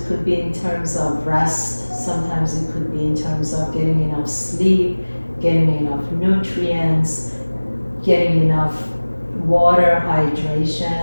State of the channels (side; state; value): both; inverted; correlation -1.00